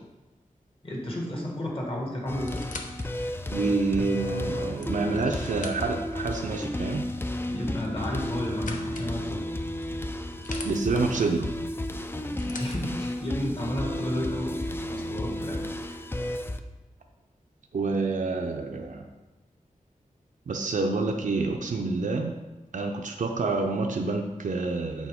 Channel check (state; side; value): normal; both; correlation 0.73